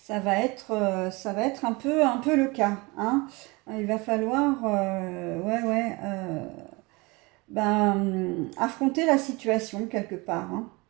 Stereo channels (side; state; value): left; quieter; 25.4 dB